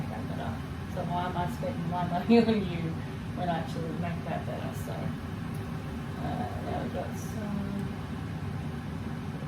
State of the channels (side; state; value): both; identical; correlation 1.00